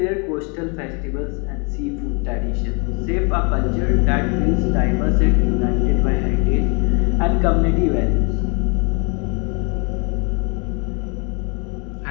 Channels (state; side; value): quieter; right; 33.7 dB